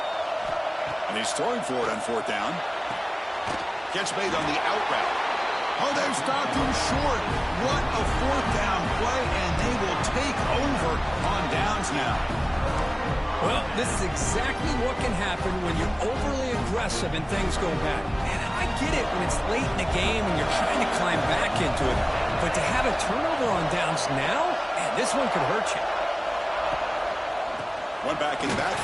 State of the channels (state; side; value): identical; both; correlation 1.00